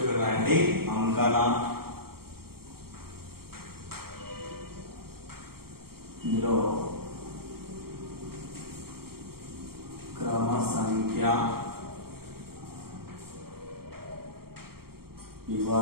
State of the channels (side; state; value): left; late; 0.94 ms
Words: ఇక్కడ రాయండి అంకణా, ఇందులో క్రమ సంఖ్య,